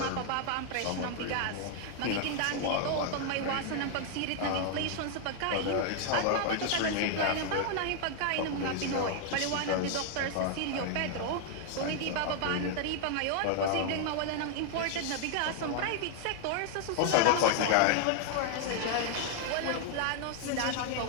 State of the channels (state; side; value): different; both; correlation 0.00